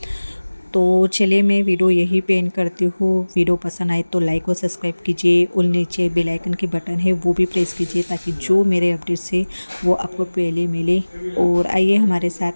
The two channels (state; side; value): inverted; both; correlation -1.00